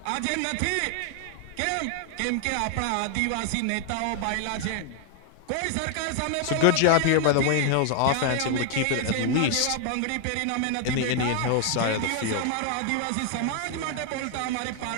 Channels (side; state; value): both; different; correlation 0.00